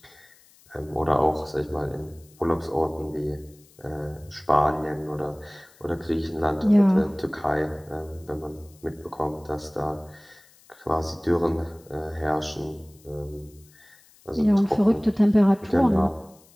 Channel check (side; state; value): left; noise; hiss, 28 dB below the sound